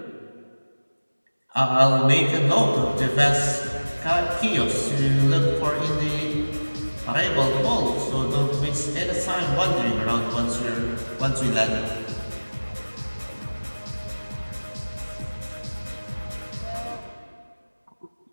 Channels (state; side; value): inverted; both; correlation -1.00